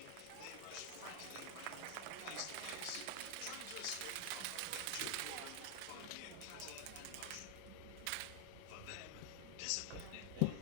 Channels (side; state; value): both; different; correlation 0.00